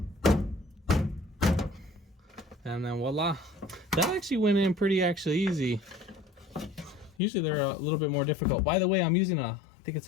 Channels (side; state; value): right; drops out; at 7.2 s